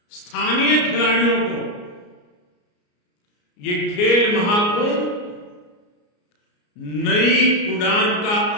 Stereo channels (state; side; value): late; right; 34 ms